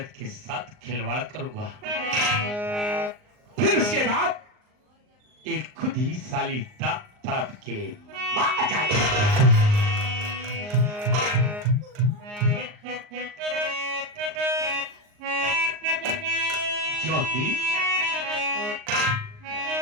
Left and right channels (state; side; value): late; left; 39 ms